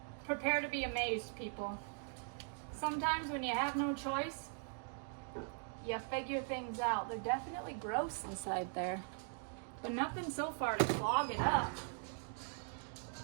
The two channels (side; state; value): left; silent; 51 dB below the other